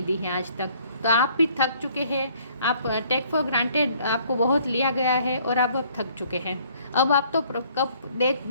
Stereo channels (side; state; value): both; inverted; correlation -0.60